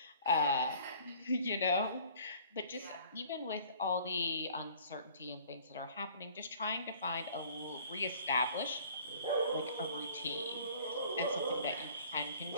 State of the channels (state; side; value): inverted; both; correlation -0.53